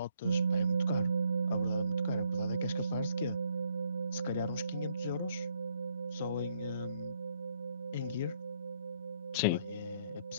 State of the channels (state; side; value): inverted; both; correlation -0.70